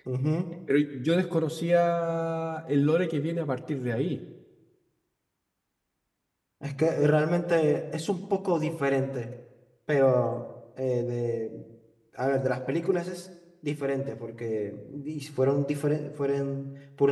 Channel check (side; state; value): both; identical; correlation 1.00